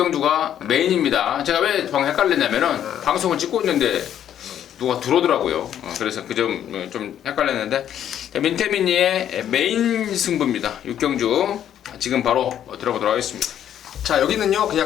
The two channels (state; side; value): quieter; right; 10.2 dB